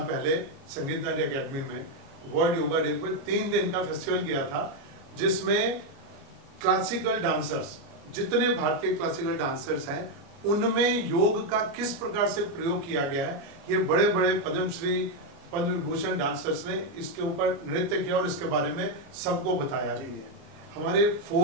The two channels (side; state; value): left; late; 29 ms